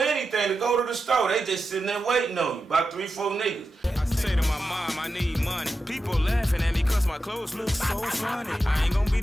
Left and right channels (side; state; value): both; normal; correlation 0.90